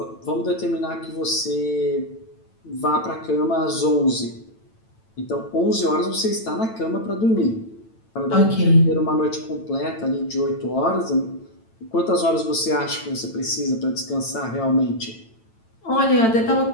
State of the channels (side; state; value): right; late; 9.0 ms